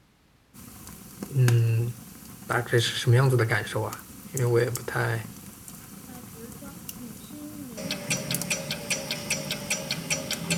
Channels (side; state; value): both; identical; correlation 1.00